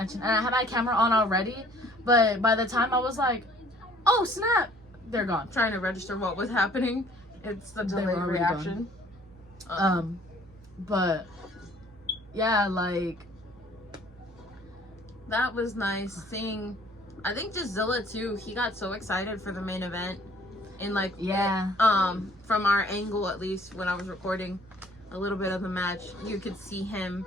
and I had my camera on already. But by the time I was like, "Oh snap!" they're gone. Trying to register what was happening. It's the They were delayed already reaction. But yeah, like That was nice seeing. I think just Zilla too. He got so excited for the main event, and like yeah, from our angle at least when I was recording a little bit of the match, you could see him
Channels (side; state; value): both; normal; correlation 0.57